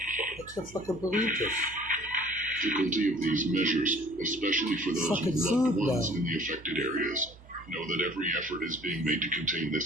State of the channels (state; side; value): normal; both; correlation 0.51